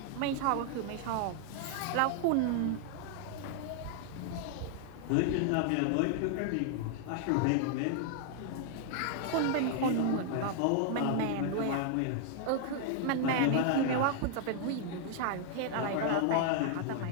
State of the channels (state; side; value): different; both; correlation 0.00